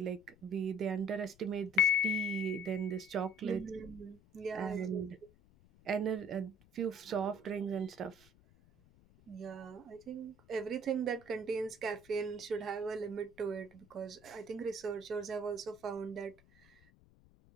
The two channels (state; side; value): noise; left; rumble, 26 dB below the sound